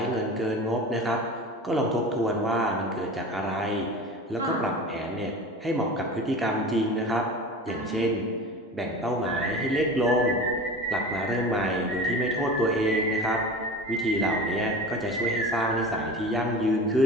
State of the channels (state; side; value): normal; both; correlation 0.34